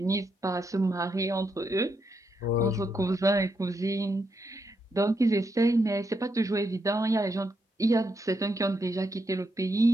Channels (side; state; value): both; normal; correlation 0.81